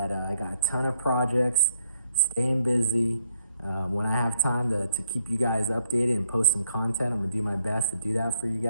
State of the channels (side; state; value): both; inverted; correlation -0.75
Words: I got a ton of projects, staying busy. When I have time to keep you guys updated and post some content, I'm gonna do my best to do that for you